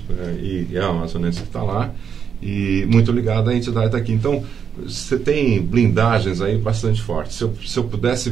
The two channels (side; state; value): left; quieter; 7.2 dB